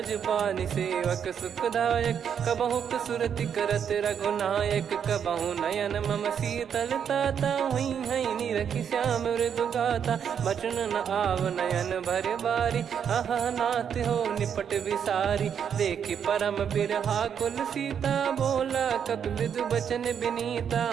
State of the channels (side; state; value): left; quieter; 7.9 dB